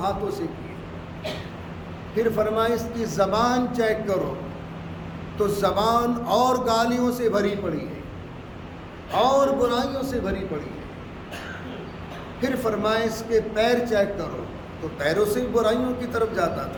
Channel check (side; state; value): both; identical; correlation 1.00